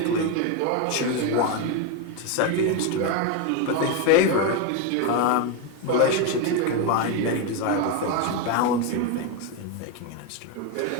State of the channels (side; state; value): both; different; correlation 0.02